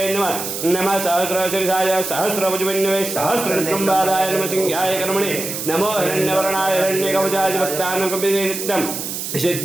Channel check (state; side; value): noise; right; hiss, 5 dB below the sound